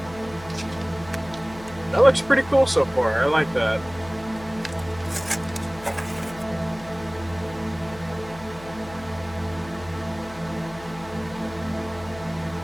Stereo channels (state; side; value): noise; left; hum, 18 dB below the sound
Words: That looks pretty cool so far. I like that.